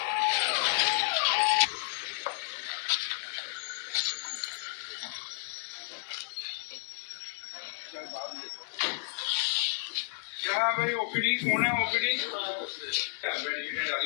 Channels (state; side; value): silent; right; digital silence